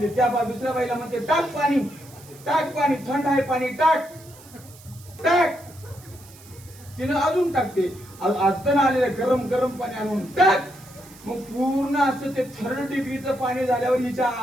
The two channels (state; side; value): noise; right; hiss, 22 dB below the sound